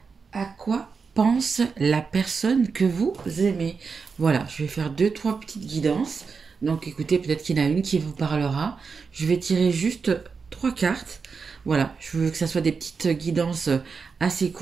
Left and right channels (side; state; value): left; quieter; 5.3 dB